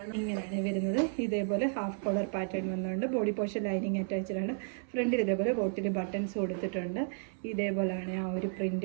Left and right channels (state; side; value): silent; left; 56 dB below the other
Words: ഇങ്ങനെയാണ് വരുന്നത്. ഇതേപോലെ ഹാഫ് കോളർ പാറ്റേൺ വന്നുകൊണ്ട് ബോഡി പോർഷൻ ലൈനിങ് അറ്റാച്ച്ഡ് ആണ്. ഫ്രണ്ടിൽ ഇതേപോലെ ബോട്ടിൽ ബട്ടൺസ് കൊടുത്തിട്ടുണ്ട്. ഇതേപോലെയാണ് ആ ഒരു